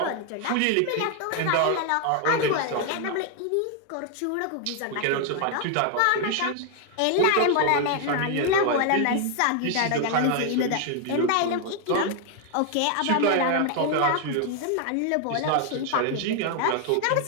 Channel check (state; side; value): different; both; correlation 0.00